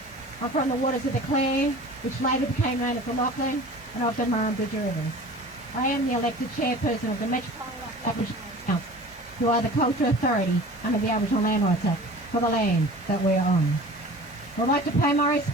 I'm from the waters of the Clan, which later became known as the Lachlan, and of the Murrumbeena Rivers. I am the elected chairperson of the Metropolitan Aboriginal Council, who are the cultural authority under the Aboriginal Land Rights Act for the land that we are on. I would like to pay my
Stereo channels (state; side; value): normal; both; correlation 0.41